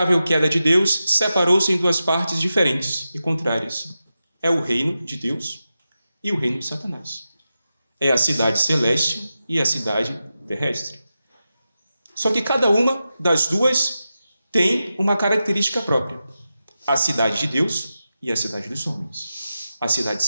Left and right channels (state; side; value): inverted; both; correlation -0.91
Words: queda de Deus, separou-se em duas partes diferentes e contrárias. É o reino de Deus e o reino de Satanás. É a cidade celeste e a cidade terrestre. Só que cada uma das duas tem uma característica própria. A cidade de Deus e a cidade dos homens. A cidade